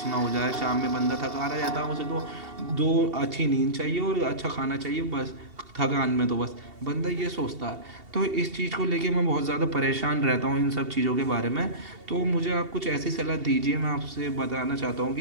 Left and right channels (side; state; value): left; late; 2.7 ms